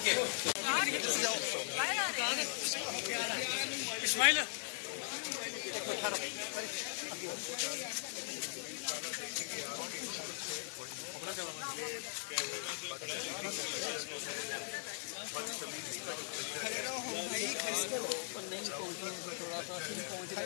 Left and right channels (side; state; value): right; silent; digital silence